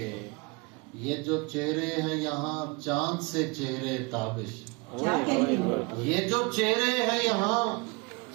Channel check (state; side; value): quieter; left; 27.9 dB